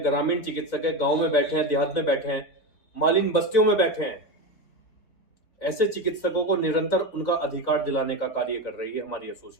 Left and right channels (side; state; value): right; late; 4.0 ms